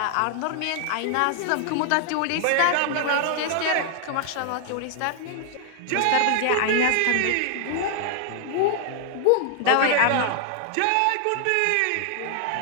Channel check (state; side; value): different; both; correlation 0.00